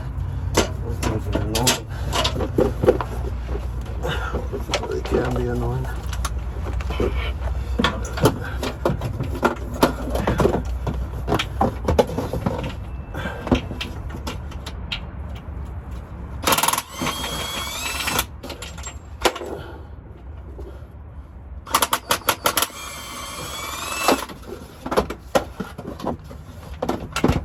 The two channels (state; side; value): identical; both; correlation 1.00